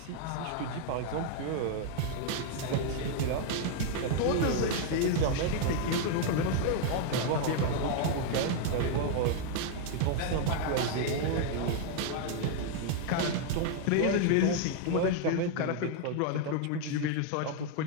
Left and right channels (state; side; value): different; both; correlation 0.00